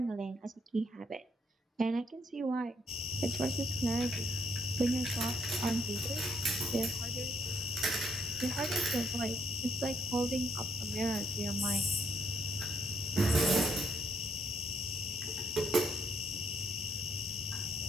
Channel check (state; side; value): normal; both; correlation 0.71